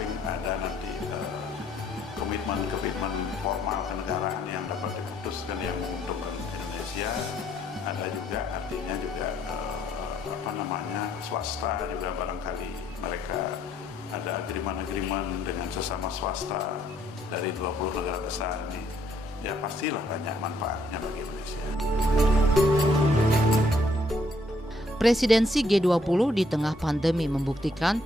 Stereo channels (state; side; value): normal; both; correlation 0.68